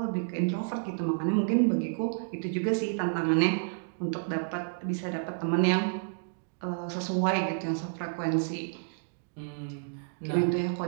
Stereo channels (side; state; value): left; silent; digital silence